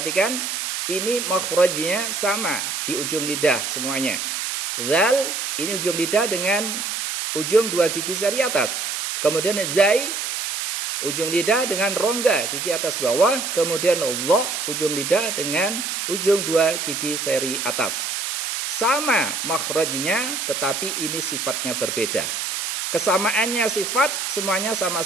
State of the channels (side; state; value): right; noise; hiss, 3 dB below the sound